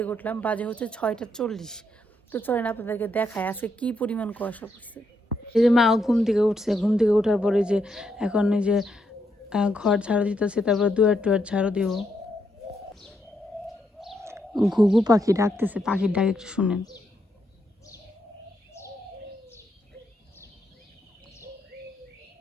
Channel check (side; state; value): both; normal; correlation 0.79